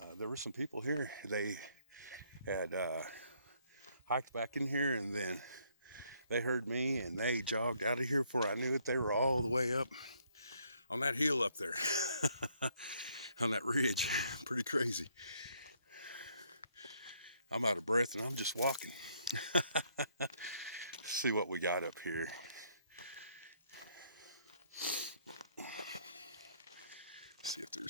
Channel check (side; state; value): both; inverted; correlation -0.68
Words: there were some people here. They had hiked back in here, and then they heard me and they jogged out of here before I knew it. They were all the way up on that hill up there on that ridge. Pretty crazy. I'm out of breath and I'm just walking. See what we got up here. See if